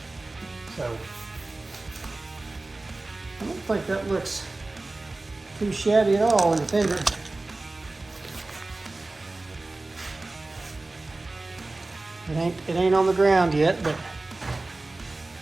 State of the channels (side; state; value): left; quieter; 3.1 dB